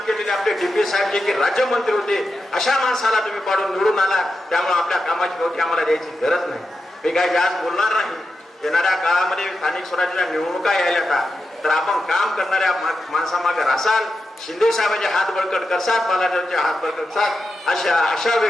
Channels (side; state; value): both; normal; correlation 0.89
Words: केलेले आपले DP साहेब जे की राज्यमंत्री होते, अशा माणसाला तुम्ही पाडून निवडून आला. त्यामुळे आपल्या कामाची गवठी आम्हाला द्यायची गरज नाही. मी काही जास्त बोलणार नाही. येणाऱ्या काळामध्ये स्थानिक स्वराज्याच्या निवडणुका यायला तर आपण काम करणाऱ्या माणसामागे रासाल, शिंदे साहेबांचे हात बळकट करसाल, बालाजीरावचे हात बळकट करसाल अशा आशा